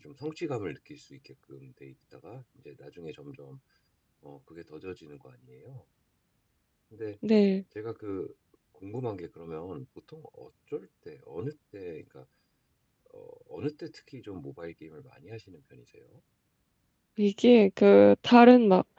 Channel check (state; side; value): identical; both; correlation 1.00